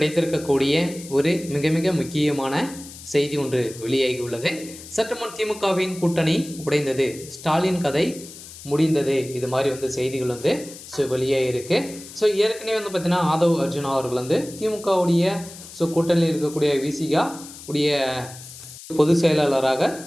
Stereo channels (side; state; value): left; noise; hiss, 16 dB below the sound